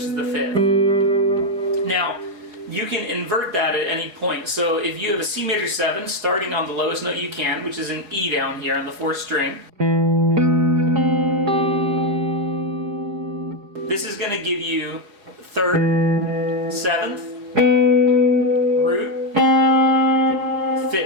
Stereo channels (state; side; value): late; left; 4.8 ms